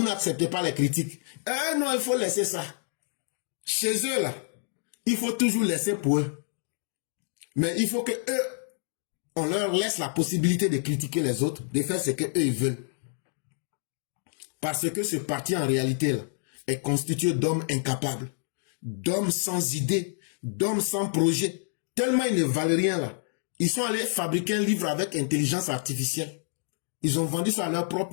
n'acceptez pas les critiques? Non, il faut laisser ça. Chez eux, là, il faut toujours laisser pour eux. Mais il faut que eux, on leur laisse la possibilité de critiquer les autres, de faire ce qu'eux ils veulent. Parce que ce parti, en réalité, là, est constitué d'hommes incapables, d'hommes sans idées, d'hommes sans projet. Tellement ils ne valent rien, là. Ils sont allés fabriquer un livre avec intelligence artificielle. Ils ont vendu ça à leurs propres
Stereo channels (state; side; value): silent; right; digital silence